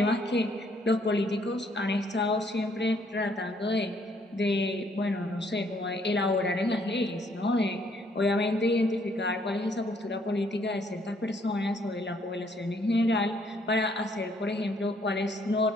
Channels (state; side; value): normal; both; correlation 0.67